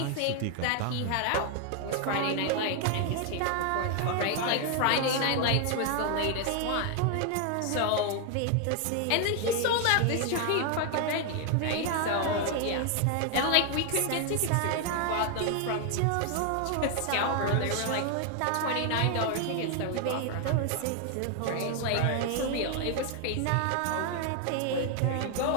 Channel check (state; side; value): different; both; correlation 0.00